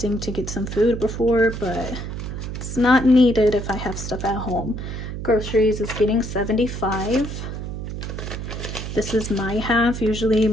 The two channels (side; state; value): right; noise; hum, 6 dB below the sound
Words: to get some food before, but it's not needed if I have stuff at home. Groceries is getting $75. This is my half. Usually